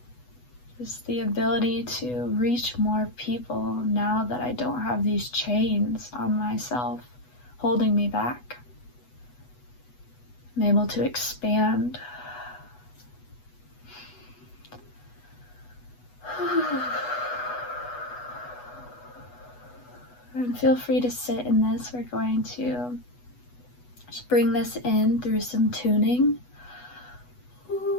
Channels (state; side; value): late; right; 8.1 ms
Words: Just the ability to reach more people now that I don't have these chains on myself holding me back. I'm able to expand. And feel free to sit in this. We're going to just bring this in through some tuning.